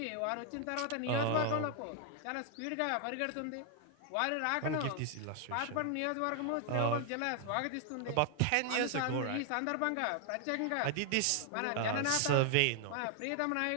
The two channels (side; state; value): both; different; correlation 0.00